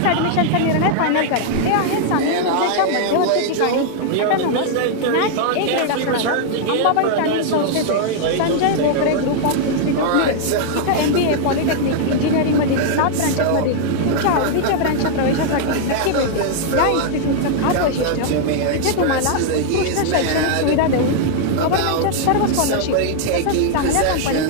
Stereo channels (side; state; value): both; different; correlation -0.01